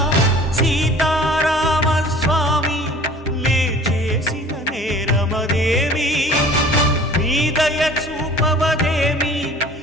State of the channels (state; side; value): normal; both; correlation 0.47